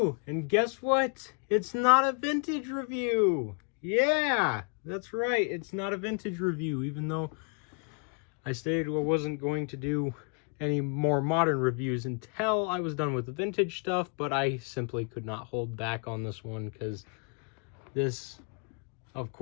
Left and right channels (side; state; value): right; quieter; 37.8 dB